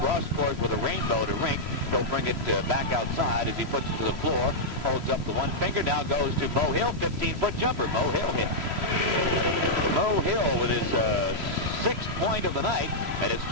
with a rainbow to Rink. He'll bring it back outside as he puts it to the floor. Holds up the one finger. Now goes to Mo Hill. 15-foot jumper. Mo Hill hits. Mo Hill with his sixth point of the night, and it's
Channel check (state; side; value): late; left; 3.0 ms